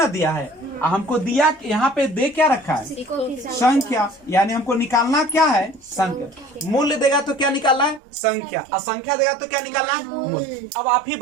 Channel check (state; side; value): drops out; left; at 8.0 s